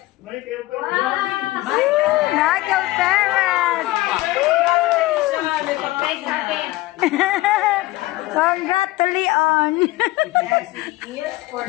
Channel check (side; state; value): right; quieter; 18.5 dB